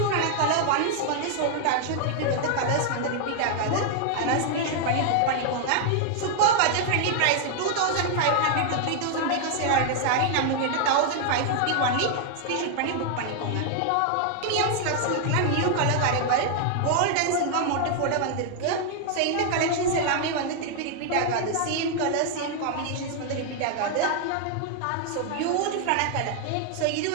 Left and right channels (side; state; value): both; different; correlation 0.00